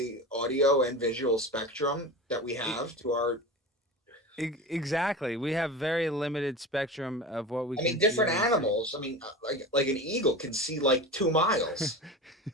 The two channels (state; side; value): normal; both; correlation 0.29